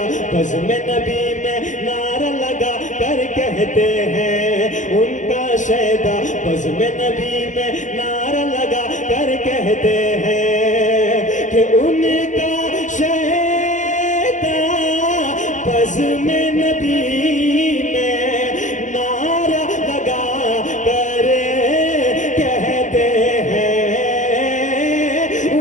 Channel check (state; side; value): late; right; 0.36 ms